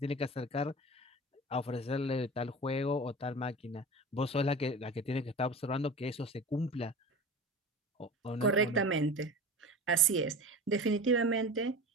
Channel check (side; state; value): both; normal; correlation 0.33